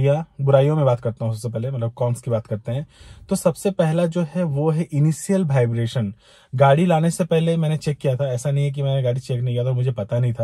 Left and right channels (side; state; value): both; identical; correlation 1.00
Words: में बात करता हूँ। सबसे पहले मतलब कॉन्स की बात करते हैं। तो सबसे पहला जो है वो है इनिशियल वाइब्रेशन। गाड़ी लाने से पहले मैंने चेक किया था, ऐसा नहीं है कि मैंने गाड़ी चेक नहीं किया था, मुझे पता नहीं